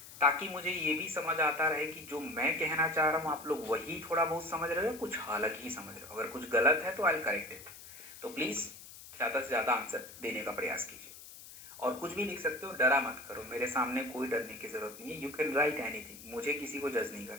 ताकि मुझे ये भी समझ आता रहे कि जो मैं कहना चाह रहा हूं आप लोग वही थोड़ा बहुत समझ रहे हो, कुछ अलग ही समझ रहे हो। अगर कुछ गलत है तो आई विल करेक्ट इट। तो प्लीज ज़्यादा से ज़्यादा आंसर देने का प्रयास कीजिए। और कुछ भी लिख सकते हो, डरा मत करो, मेरे सामने कोई डरने की जरूरत नहीं है। यू कैन राइट एनीथिंग, मुझे किसी को जज नहीं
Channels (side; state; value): left; noise; hiss, 16 dB below the sound